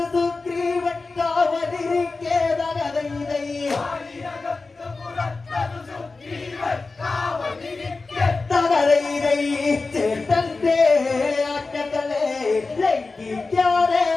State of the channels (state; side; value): quieter; right; 3.8 dB